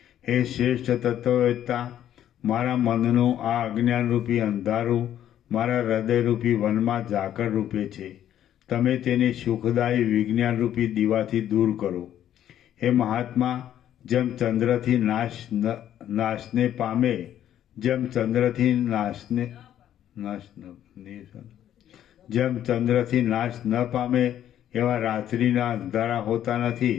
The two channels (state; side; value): quieter; right; 11.1 dB